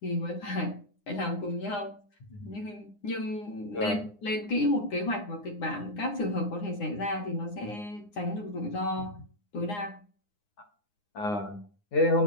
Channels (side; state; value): right; late; 9.7 ms